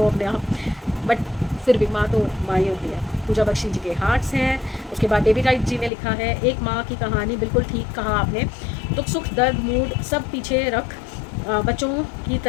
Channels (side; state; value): right; drops out; at 5.9 s